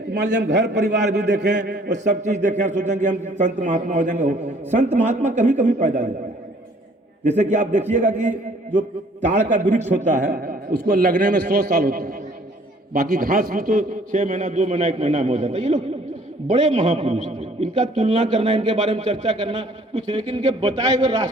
मान लीजिए हम घर परिवार भी देखें और सब चीज देखें, सोचेंगे हम संत महात्मा हो जाएंगे। हो संत महात्मा कभी कभी पैदा होता है। जैसे कि आप देखिएगा कि जो ताड़ का वृक्ष होता है उसको लगने में 100 साल होता है, बाकी घास भी तो 6 महीना 2 महीना 1 महीना में हो जाता है। ये लोग बड़े महापुरुष थे, इनका तुलना करना, इनके बारे में चर्चा करना कुछ, लेकिन इनके बताए हुए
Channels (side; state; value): both; normal; correlation 0.57